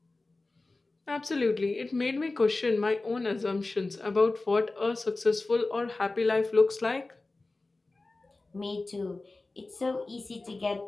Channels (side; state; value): right; quieter; 3.3 dB